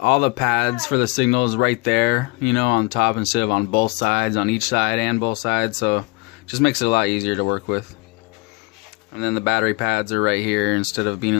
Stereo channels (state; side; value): quieter; right; 26.7 dB